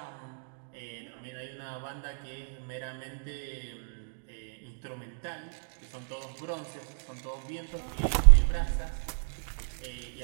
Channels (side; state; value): left; silent; digital silence